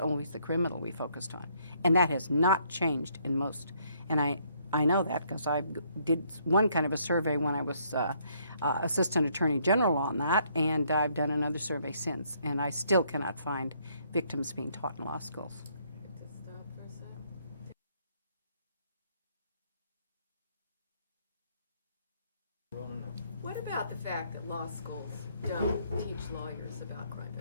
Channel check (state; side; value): inverted; both; correlation -0.69